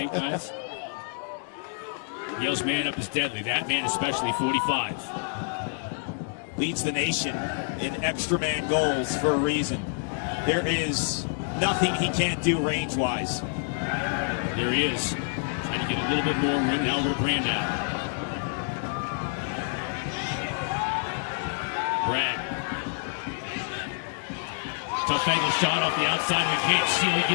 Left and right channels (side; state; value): right; silent; 60 dB below the other